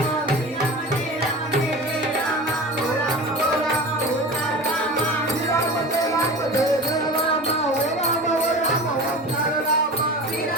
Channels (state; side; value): normal; both; correlation 0.33